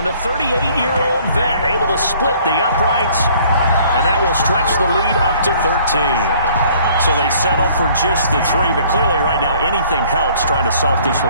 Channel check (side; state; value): both; inverted; correlation -0.57